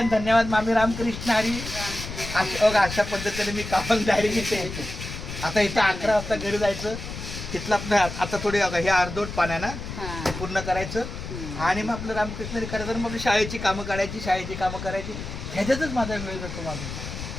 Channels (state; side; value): noise; left; rumble, 8 dB below the sound